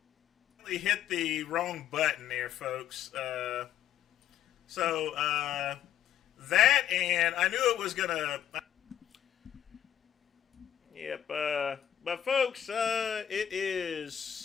Hit the wrong button there, folks. That, and I knew it was gonna. Yep. But folks, it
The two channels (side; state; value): right; quieter; 10.4 dB